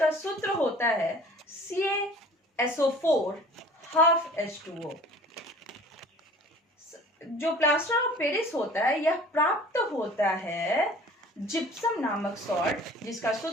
सूत्र होता है CaSO4 जो प्लास्टर ऑफ पेरिस होता है यह प्राप्त होता है जिप्सम नामक सॉल्ट, जिसका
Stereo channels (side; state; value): both; normal; correlation 0.47